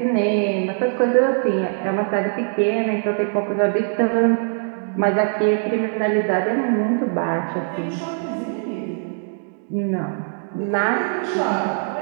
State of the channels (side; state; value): left; silent; digital silence